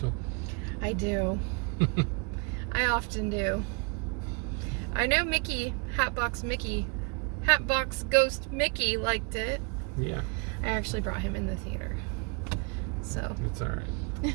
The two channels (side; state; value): left; quieter; 34.5 dB